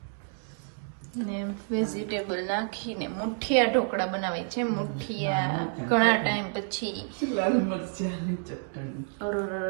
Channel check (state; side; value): silent; left; 58 dB below the other